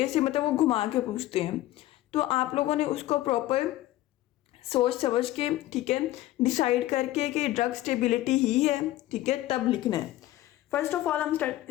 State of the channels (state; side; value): quieter; right; 15.5 dB